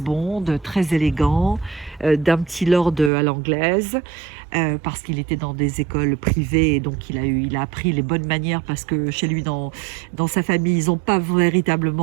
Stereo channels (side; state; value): left; drops out; at 3.1 s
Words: Bond, très élégant, d'un petit lord à l'anglaise, parce qu'il était dans des écoles privées, et donc il a appris les bonnes manières, parce que chez lui, dans sa famille, ils n'ont pas